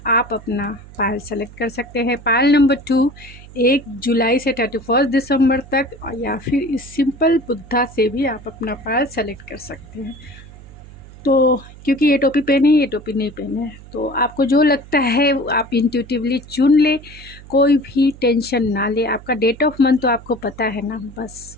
आप अपना पायल सेलेक्ट कर सकते हैं। पायल नंबर 2 1 जुलाई से 31 दिसंबर तक, या फिर इस सिंपल बुद्धा से भी आप अपना पायल सेलेक्ट कर सकते हैं। तो क्योंकि ये टोपी पहने हैं, ये टोपी नहीं पहने हैं, तो आपको जो लगता है आप इंट्यूटिवली चुन ले, कोई भी टेंशन ना ले। आपका डेट ऑफ मंथ तो आपको पता है ना, बस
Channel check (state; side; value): noise; right; hum, 19 dB below the sound